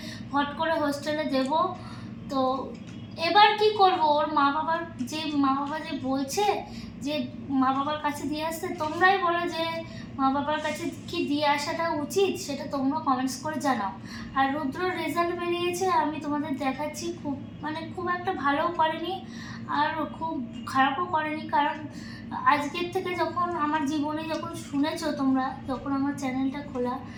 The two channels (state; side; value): identical; both; correlation 1.00